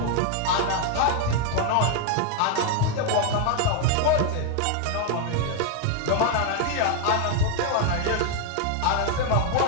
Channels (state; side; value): different; both; correlation 0.00